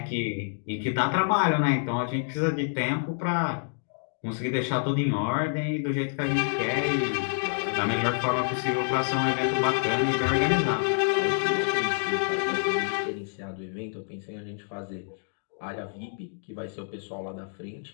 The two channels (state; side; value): silent; right; digital silence